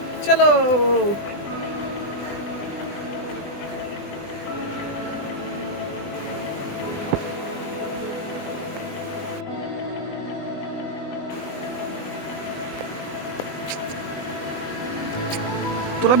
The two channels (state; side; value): late; right; 20 ms